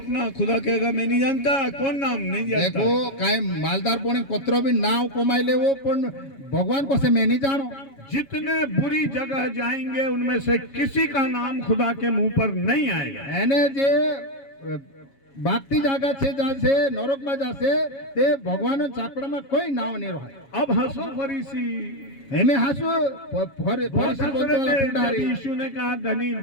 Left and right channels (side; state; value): right; late; 7.3 ms